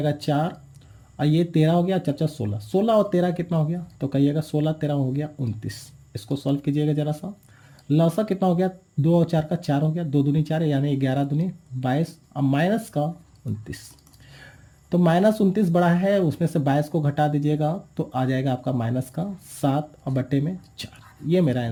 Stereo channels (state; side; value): identical; both; correlation 1.00